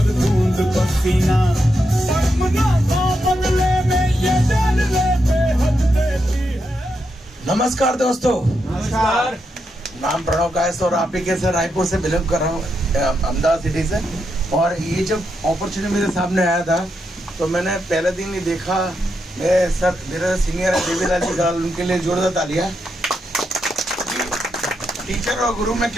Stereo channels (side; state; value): both; normal; correlation 0.83